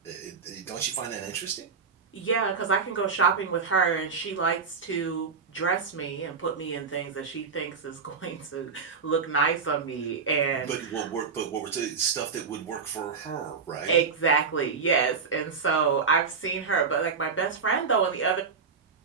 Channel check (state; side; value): quieter; left; 5.4 dB